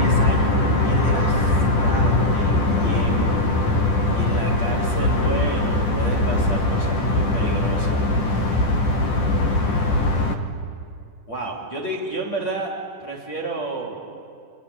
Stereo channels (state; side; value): late; right; 10 ms